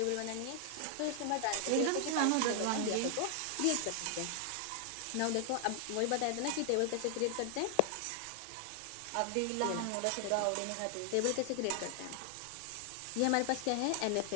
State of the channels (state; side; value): different; both; correlation 0.00